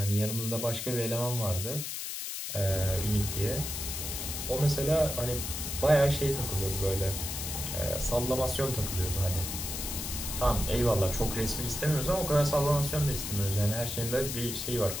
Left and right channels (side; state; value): left; noise; hiss, 5 dB below the sound